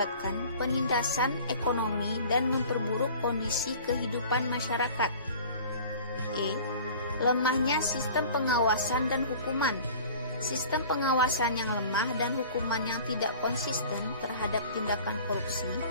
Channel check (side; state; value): both; inverted; correlation -0.44